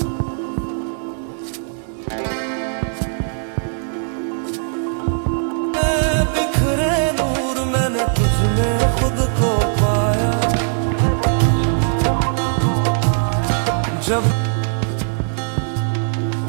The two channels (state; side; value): silent; left; digital silence